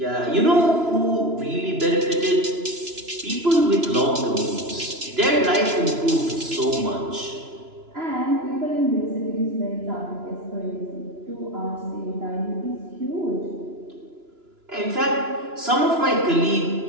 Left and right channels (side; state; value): left; late; 2.9 ms